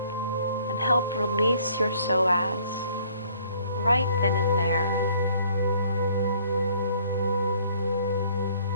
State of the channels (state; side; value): inverted; both; correlation -0.60